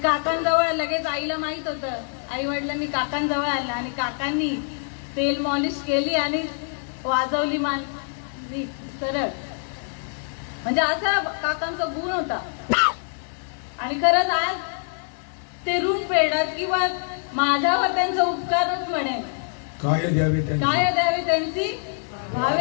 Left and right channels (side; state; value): right; silent; 61 dB below the other